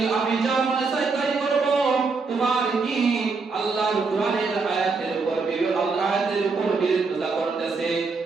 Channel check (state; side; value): quieter; left; 4.4 dB